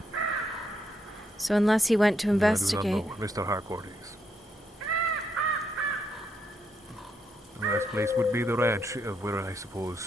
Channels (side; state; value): both; normal; correlation 0.78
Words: So unless he went to investigate... I do not know where Mr. Harcourt is. The last place would be the ranch, of where I